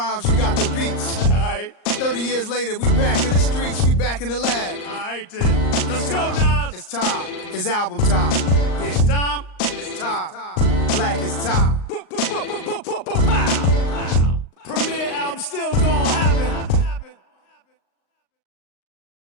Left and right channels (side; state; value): right; late; 38 ms